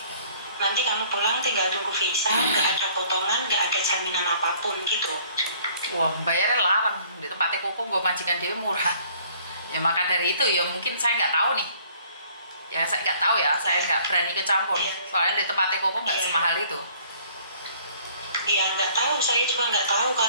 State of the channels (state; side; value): inverted; both; correlation -0.57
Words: Nanti kamu pulang tinggal tunggu visa, nggak ada potongan, nggak ada jaminan apapun gitu. Wah, bayarnya larang. Di tempatnya Koko gue majikan dia murah. Ya maka dari itu ya mungkin saya nggak tahu nih. Ya saya nggak tahu ya, saya nggak berani kecampur. Soalnya di tempatnya Koko nggak semahal itu. Iya nggak tahu, saya juga nggak tahu